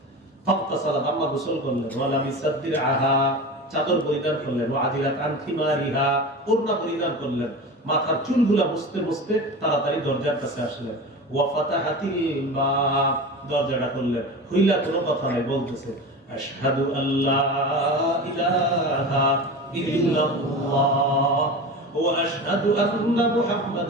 ফাগতাসালাত, আম্মা গোসল করলেন। ওয়ালা মিসাদ্দির আহা, চাদর পরিধান করলেন। ওয়া আদিলাত আন খিমারিহা, ওড়না পরিধান করলেন। মাথার চুলগুলা মুছতে মুছতে তাড়াতাড়ি দরজার কাছে আসলেন। ওয়া ফাতাহাতিল বাব, দরজাটা খুললেন। খুইলা কোনো কথা নাই, বলতেছে আশহাদু আল্লা ইলাহা ইল্লাল্লাহ ওয়া আশহাদু আন্না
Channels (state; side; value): normal; both; correlation 0.30